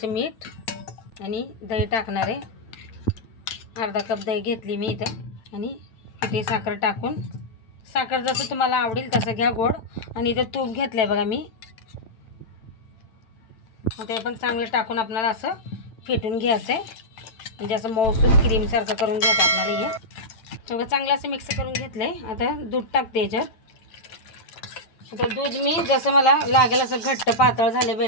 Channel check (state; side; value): late; right; 9.0 ms